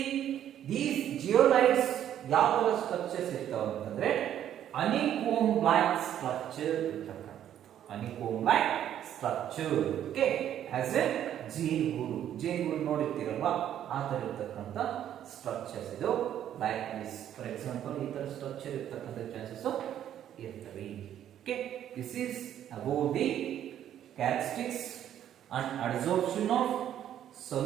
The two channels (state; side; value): quieter; left; 10.7 dB